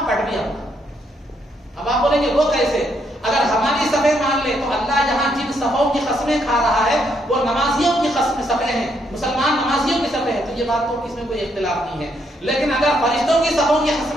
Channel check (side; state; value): both; normal; correlation 0.74